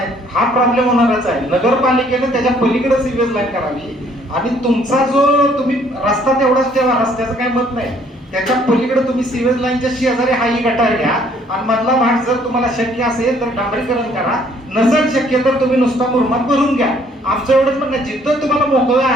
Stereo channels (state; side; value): normal; both; correlation 0.62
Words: हा प्रॉब्लेम होणारच आहे. नगरपालिकेने त्याच्या पलीकडे सिव्हिल लाईन करावी आणि तुमचा जो तुम्ही रस्ता तेवढाच ठेवा, रस्त्याचं काही मत नाही, त्याच्या पलीकडे तुम्ही सिव्हिल लाईनच्या शेजारी हाही गटार घ्या आणि मधला भाग जर तुम्हाला शक्य असेल तर डांबरीकरण करा, नसेल शक्य तर तुम्ही नुसता मुरमात भरून घ्या. आमचं एवढंच म्हणणं, जिथं तुम्हाला मोकळं